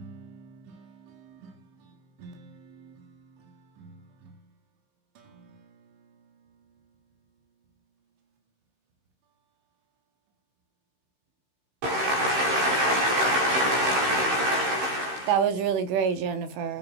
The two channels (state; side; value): late; left; 15 ms